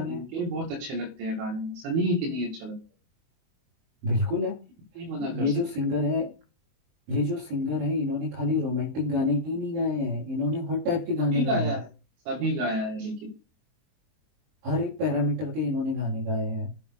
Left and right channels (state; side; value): late; left; 23 ms